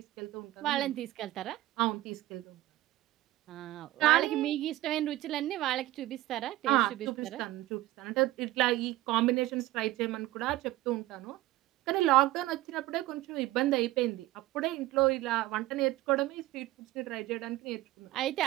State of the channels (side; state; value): left; quieter; 16.5 dB